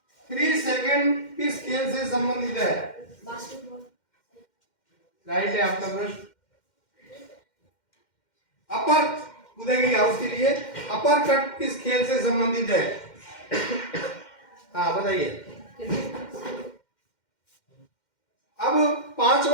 3 second किस खेल से संबंधित है? बास्केटबॉल। राइट है आपका प्रश्न। अपर उदयगिरी हाउस के लिए अपर कट किस खेल से संबंधित है? हाँ बताइए। अब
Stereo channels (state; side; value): late; right; 2.1 ms